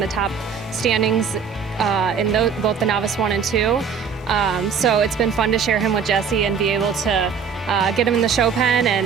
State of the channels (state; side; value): quieter; left; 6.5 dB